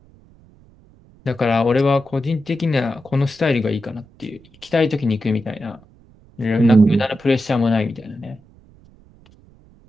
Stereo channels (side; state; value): right; noise; rumble, 27 dB below the sound